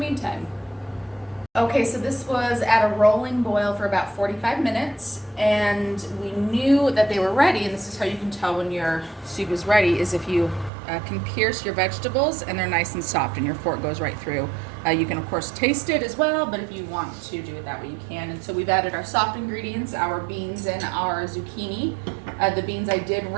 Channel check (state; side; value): drops out; left; at 10.7 s